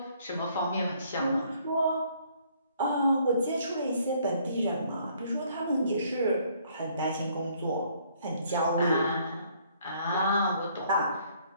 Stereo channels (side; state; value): both; inverted; correlation -0.64